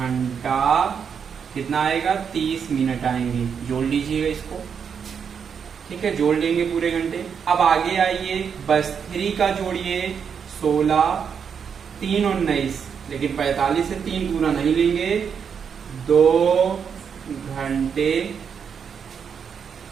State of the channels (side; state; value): left; quieter; 7.0 dB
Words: कितना आएगा 30 मिनट आएंगे। जोड़ लीजिएगा इसको। ठीक है, जोड़ लेंगे पूरे घंटे। अब आगे आइए, बस 3 का जोड़िए 16, 3 और 19, लेकिन 45 से 3 पूरा नहीं लेंगे, 2 घंटे।